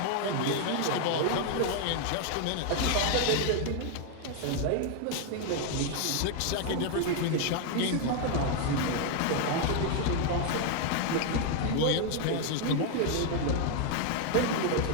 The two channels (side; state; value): both; different; correlation 0.00